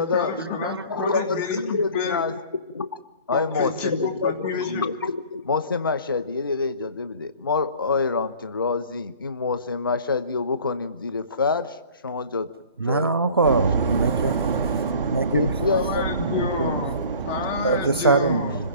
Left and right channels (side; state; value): both; inverted; correlation -0.46